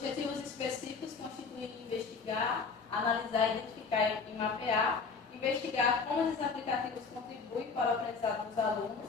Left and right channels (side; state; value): right; quieter; 4.9 dB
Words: específicos constituem investigar, analisar, identificar e mapear, investigar como esses aplicativos contribuem para o aprendizado dos